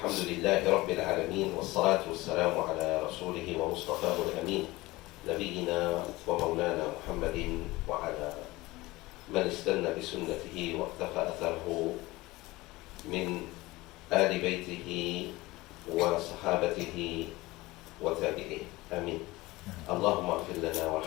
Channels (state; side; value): quieter; right; 20.2 dB